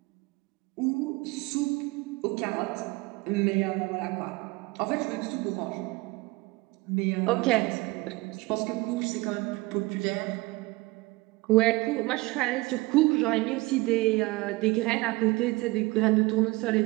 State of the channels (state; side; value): quieter; left; 22.7 dB